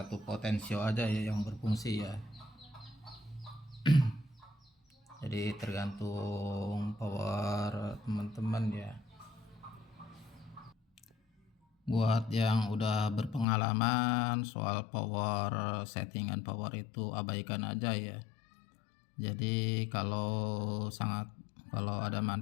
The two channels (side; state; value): right; drops out; at 13.5 s